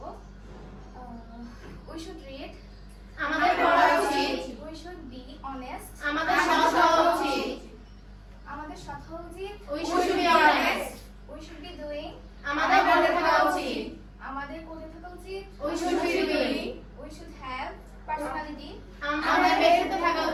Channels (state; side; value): identical; both; correlation 1.00